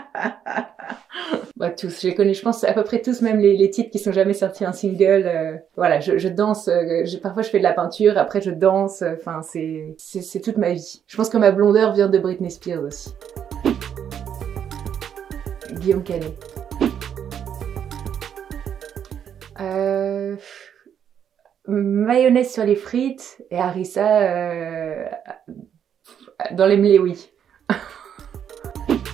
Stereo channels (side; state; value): left; quieter; 8.7 dB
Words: Bah, tous, je les connais, je pense à peu près tous, même les titres qui sont jamais sortis en single. Voilà, je danse, parfois je fais de la peinture, après je danse, enfin c'est toute ma vie. Je pense que ma blondeur vient de Britney Spears aussi. Guillaume Canet. Mayonnaise sur les frites et harissa dans les mléouis.